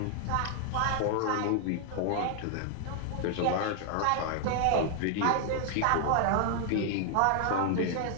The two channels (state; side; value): different; both; correlation 0.00